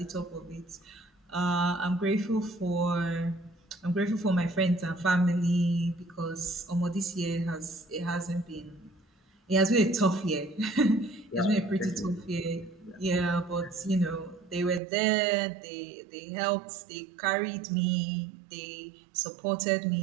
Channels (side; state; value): left; drops out; at 14.8 s